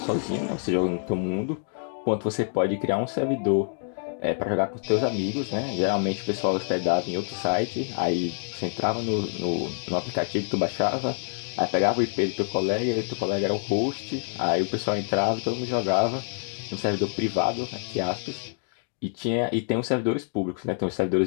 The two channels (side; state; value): right; silent; digital silence